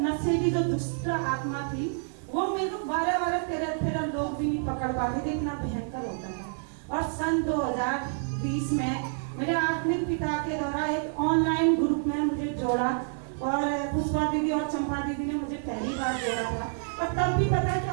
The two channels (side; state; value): left; silent; digital silence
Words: नशे की जो दुष्ट आत्मा थी, वो मेरे को 12-12, 13-13 लोग भी नहीं पकड़ पाते थे, इतना भयंकर होता था। और सन 2020 में मेरे आत्मिक पिता के द्वारा एक ऑनलाइन ग्रुप में मुझे जोड़ा, और पुष्पा दीदी और चंपा दीदी ने मुझे पहली बार जोड़ा था। और तब भी पता क्या